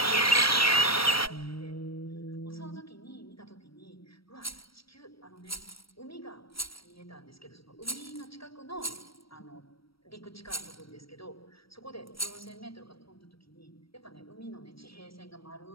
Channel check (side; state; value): right; late; 0.75 ms